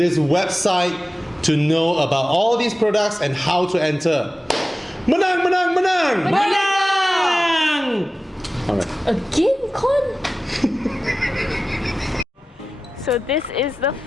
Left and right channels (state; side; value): normal; both; correlation 0.96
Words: website to know about all these products and how to enter. Menang, menang, menang! Menang! Alright. Again, Con? So this is the